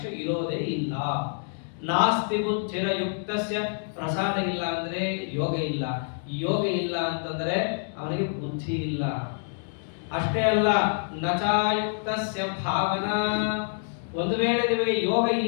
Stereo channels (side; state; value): right; silent; digital silence